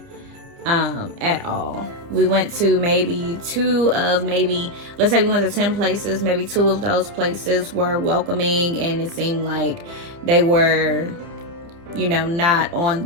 at all. We went to maybe let's say we went to 10 places, maybe 2 of those places were welcoming, and it seemed like they were, not on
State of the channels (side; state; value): left; late; 30 ms